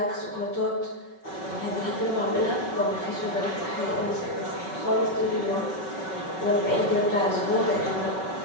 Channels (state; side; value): late; right; 5.3 ms